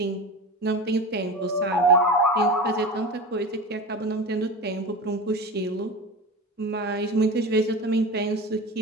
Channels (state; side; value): normal; both; correlation 0.29